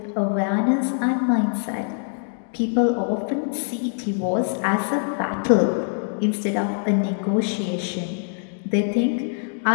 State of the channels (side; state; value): right; silent; digital silence